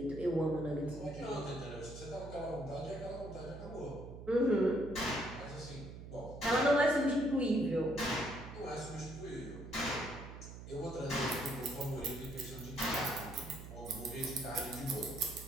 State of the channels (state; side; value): noise; right; hum, 12 dB below the sound